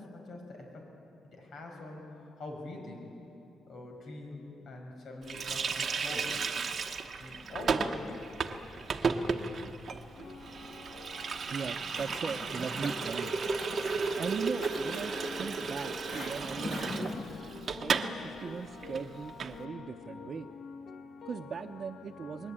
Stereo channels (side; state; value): left; quieter; 3.8 dB